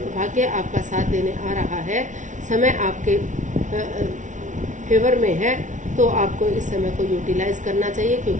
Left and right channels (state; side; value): late; left; 0.37 ms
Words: भाग्य आपका साथ देने आ रहा है, समय आपके फेवर में है, तो आपको इस समय को यूटिलाइज करना चाहिए,